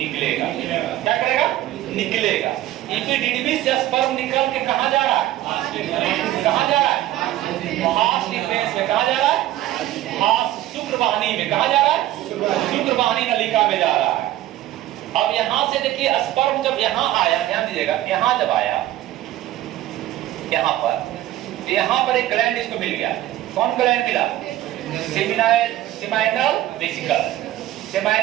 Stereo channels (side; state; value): left; quieter; 14.3 dB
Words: क्या करेगा? निकलेगा। एपिडिडमिस से स्पर्म निकल के कहाँ जा रहा है? कहाँ जा रहा है? हास डिफेंस में। कहाँ जा रहा है? हास शुक्रवाहिनी में। कहाँ जा रहा है? शुक्रवाहिनी नलिका में जा रहा है। अब यहाँ से देखिए, स्पर्म जब यहाँ आया, ध्यान दीजिएगा, यहाँ जब आया, यहाँ पर एक ग्लैंड इसको मिल गया। कौन ग्लैंड मिला? Seminal vesicle,